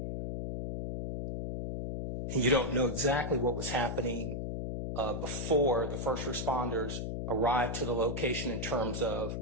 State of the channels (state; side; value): noise; left; hum, 3 dB below the sound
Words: And you don't know exactly what was happening before the first responders arrived to the location in terms of